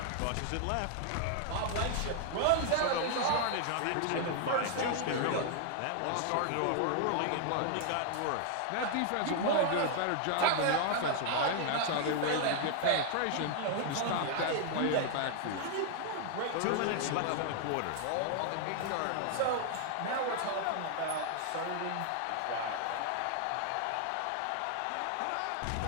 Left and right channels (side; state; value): both; different; correlation 0.00